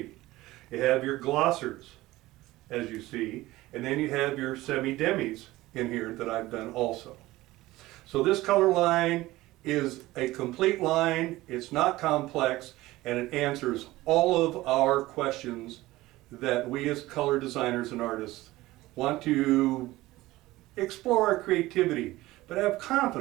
You have your glossers, as you see, and then you have your semi-demis in here that I've done also. So this color line is a complete line, it's not complex, and it answers all of our questions that we as color designers and artists want to explore our creativity, but have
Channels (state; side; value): quieter; left; 18.0 dB